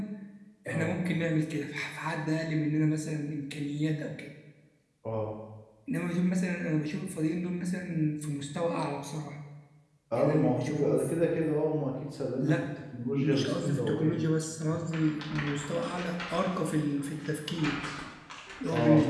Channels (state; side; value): identical; both; correlation 1.00